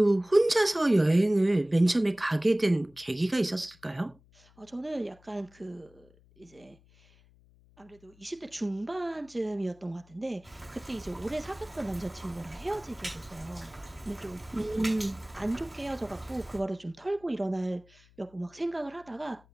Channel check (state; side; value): noise; left; hum, 28 dB below the sound